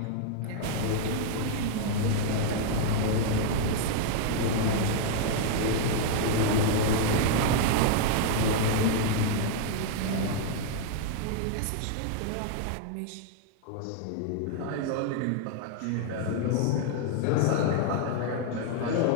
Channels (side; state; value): both; different; correlation 0.00